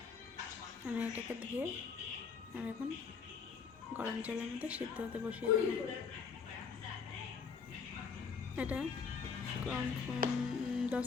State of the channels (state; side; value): quieter; right; 5.7 dB